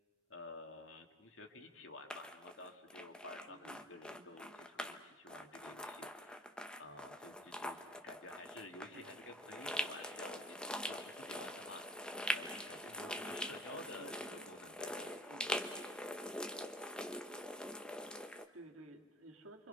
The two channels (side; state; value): both; normal; correlation 0.50